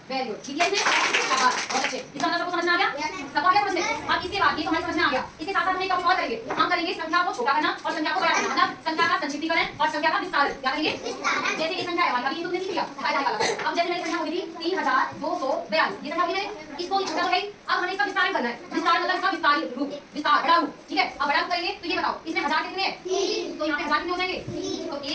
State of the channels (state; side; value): identical; both; correlation 1.00